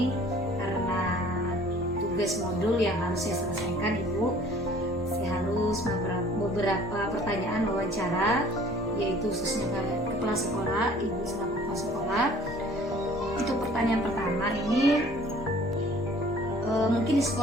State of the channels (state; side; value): normal; both; correlation 0.52